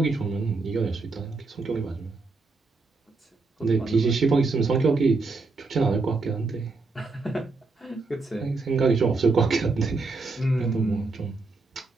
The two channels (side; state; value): left; quieter; 3.8 dB